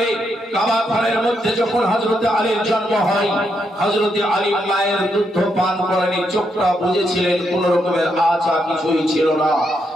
কাবা ঘরের মধ্যে যখন হযরতে আলীর জন্ম হয়, হযরতে আলী মায়ের দুধ পান করেনি, চোখটা বুঝেছিলেন কোন রকমের আশা কিছুই ছিল না।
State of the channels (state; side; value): normal; both; correlation 0.79